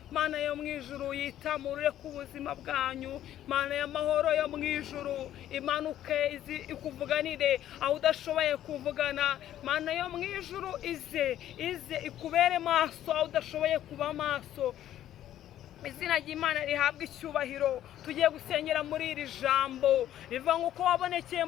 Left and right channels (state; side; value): quieter; right; 12.0 dB